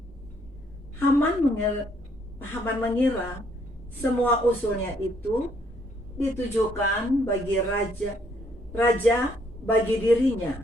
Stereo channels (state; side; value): normal; both; correlation 0.68